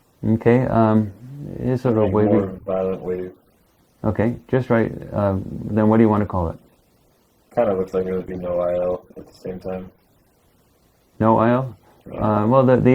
Okay, it's sort of Like wavy. more violent wave. Okay, just right. Then what do you want to call it? Kind of looks like it would be no IL at the same time. No IL? Yeah. Well, the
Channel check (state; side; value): identical; both; correlation 1.00